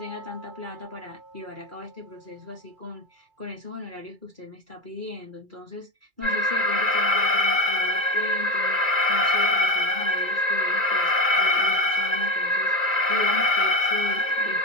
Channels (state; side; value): late; left; 2.3 ms